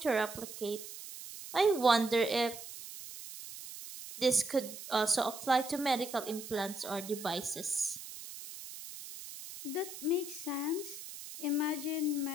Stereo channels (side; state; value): right; noise; hiss, 12 dB below the sound